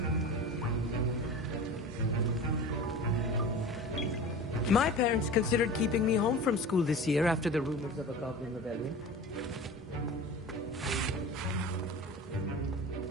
My parents considered keeping me home from school this year after the rumors of a goblin rebellion.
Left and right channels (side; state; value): both; normal; correlation 0.34